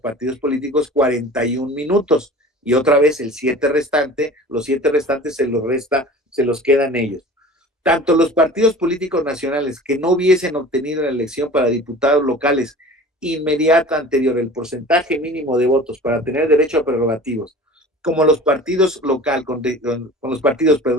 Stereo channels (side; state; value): both; normal; correlation 0.40